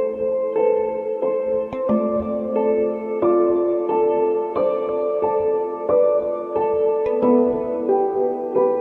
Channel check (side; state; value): both; identical; correlation 1.00